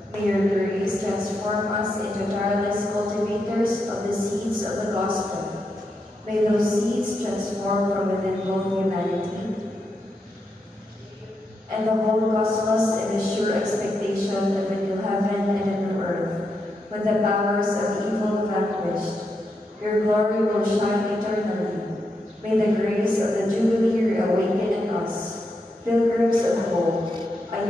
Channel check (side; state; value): both; normal; correlation 0.83